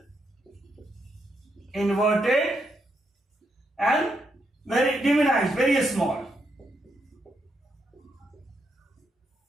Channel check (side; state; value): both; normal; correlation 0.80